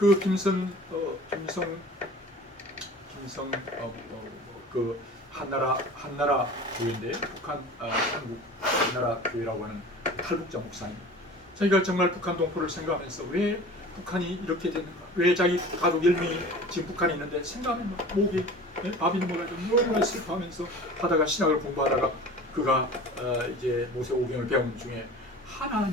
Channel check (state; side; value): normal; both; correlation 0.40